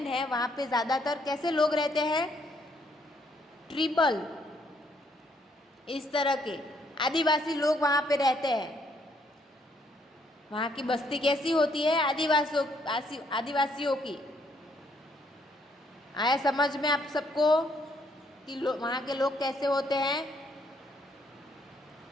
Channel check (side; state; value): both; normal; correlation 0.70